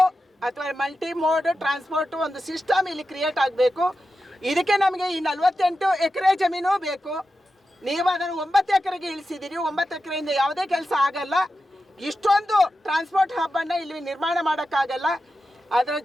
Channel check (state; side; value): normal; both; correlation 0.91